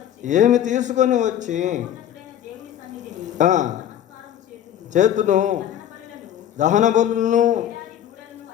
ఏమి తీసుకొని వచ్చి చేతును, దహన బలులను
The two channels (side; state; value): right; quieter; 10.7 dB